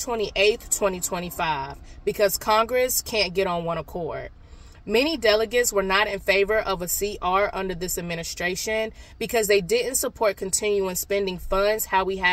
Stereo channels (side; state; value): both; identical; correlation 1.00